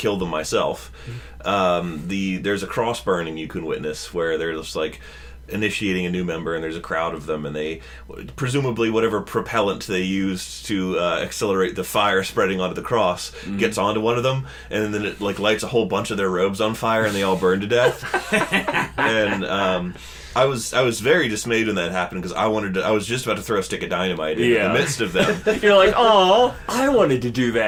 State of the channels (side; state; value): both; identical; correlation 1.00